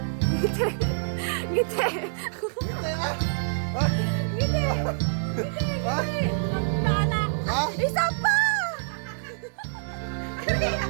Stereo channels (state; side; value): silent; left; 61 dB below the other